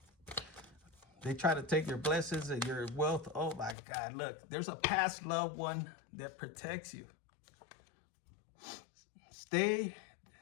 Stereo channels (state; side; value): drops out; right; at 3.8 s